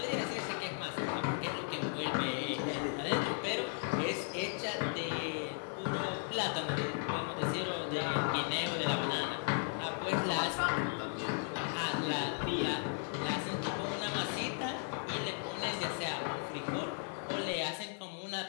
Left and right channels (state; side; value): silent; right; 54 dB below the other